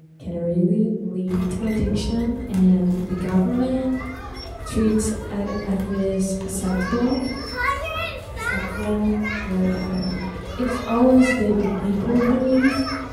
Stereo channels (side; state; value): both; identical; correlation 1.00